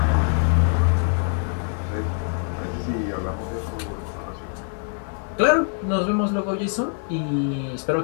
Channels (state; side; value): silent; right; 57 dB below the other